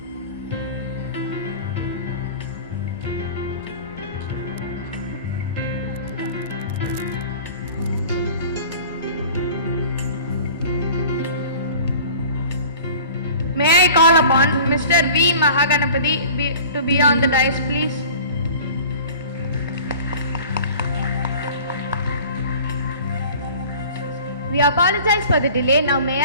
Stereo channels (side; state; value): both; inverted; correlation -0.43